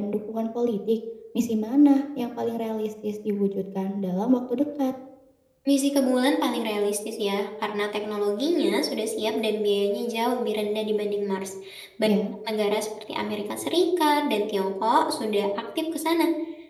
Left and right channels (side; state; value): both; identical; correlation 1.00